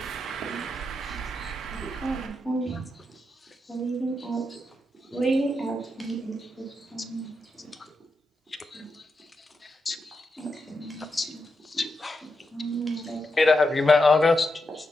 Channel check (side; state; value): both; normal; correlation 0.86